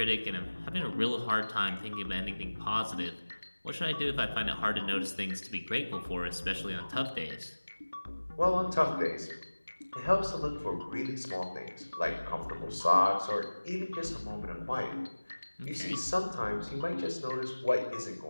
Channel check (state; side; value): inverted; both; correlation -1.00